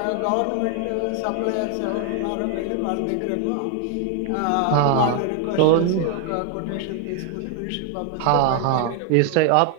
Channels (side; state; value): both; different; correlation 0.00